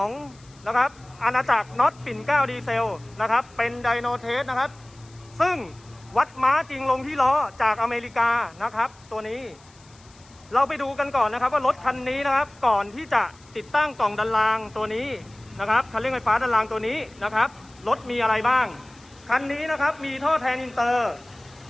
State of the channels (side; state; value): left; noise; hiss, 27 dB below the sound